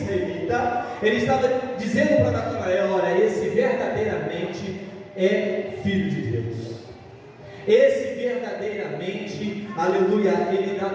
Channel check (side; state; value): both; identical; correlation 1.00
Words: Ele estava dizendo para Natanael: olha, esse verdadeiramente é filho de Deus. Esse verdadeiramente, aleluia, ele dá